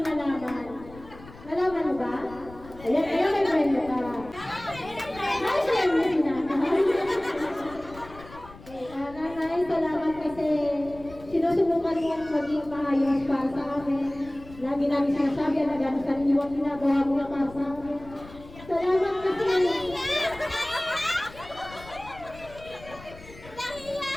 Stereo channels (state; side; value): noise; left; rumble, 18 dB below the sound